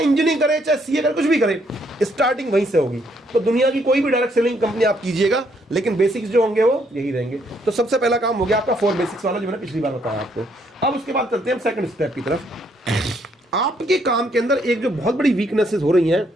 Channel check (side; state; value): both; normal; correlation 0.70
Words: इंजीनियरिंग करे, चाहे CA करे, कुछ भी करे, स्टार्टिंग वहीं से होगी। तो दुनिया की कोई भी डायरेक्ट सेलिंग कंपनी आप कीजिएगा, लेकिन बेसिक्स जो होंगे वो यही रहेंगे। तो सबसे पहला काम हो गया आपका 4 बेसिक्स वाला, जो मैंने पिछली बार बताया आपको। अब उसके बाद चलते हैं सेकंड स्टेप की तरफ। आपके काम के अंदर एक जो बहुत बड़ी वीकनेसेस हो रही हैं